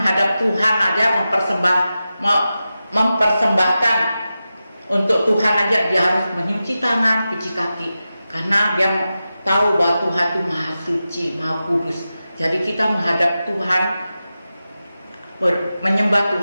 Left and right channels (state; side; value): inverted; both; correlation -0.93